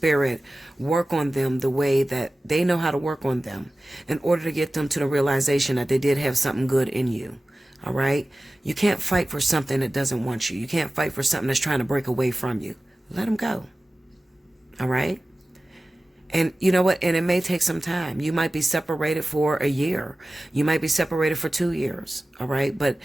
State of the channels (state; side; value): normal; both; correlation 0.96